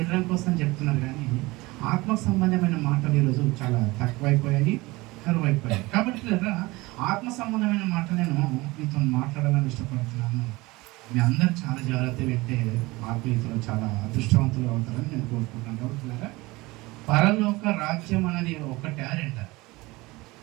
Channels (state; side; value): quieter; left; 21.8 dB